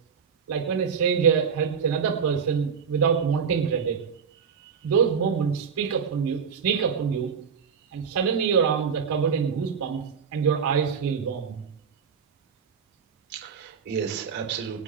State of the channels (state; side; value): quieter; left; 6.6 dB